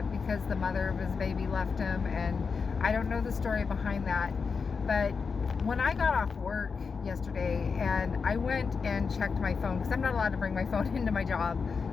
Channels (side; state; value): right; quieter; 5.3 dB